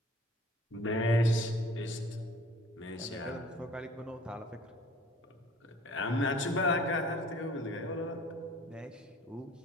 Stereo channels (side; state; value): both; normal; correlation 0.50